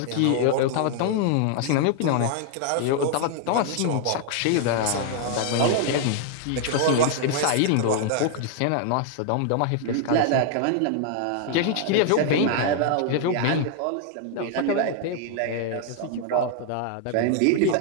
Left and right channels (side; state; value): both; different; correlation 0.00